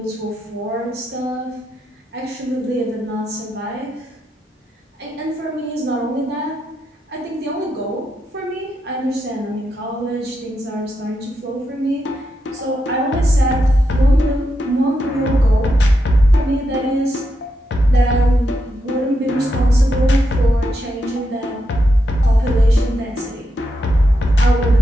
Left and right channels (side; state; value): both; normal; correlation 0.84